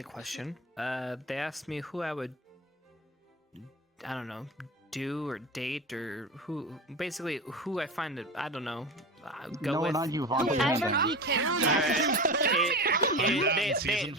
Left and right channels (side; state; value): both; normal; correlation 0.27